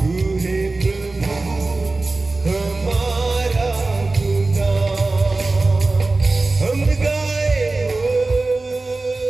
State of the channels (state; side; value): quieter; left; 3.4 dB